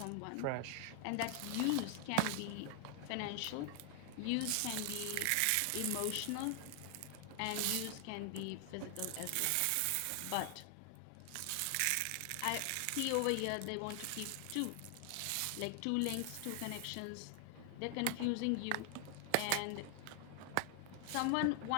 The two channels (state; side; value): different; both; correlation 0.00